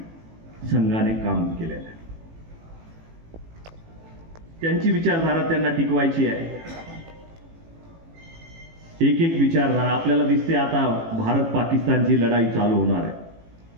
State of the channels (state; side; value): late; left; 18 ms